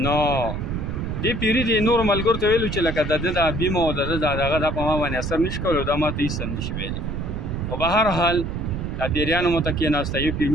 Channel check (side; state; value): right; noise; rumble, 4 dB below the sound